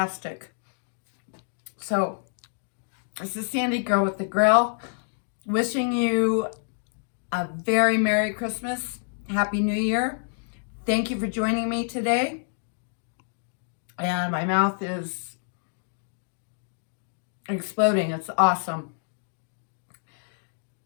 So, this is Sandy, Girl with the Grill, wishing you a very Merry Christmas, Happy New Year. Thank you for joining me today. And my mouth is exploding. It's awesome.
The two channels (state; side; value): silent; right; digital silence